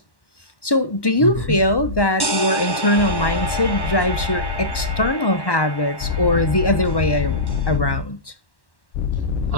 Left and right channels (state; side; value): late; right; 1.1 ms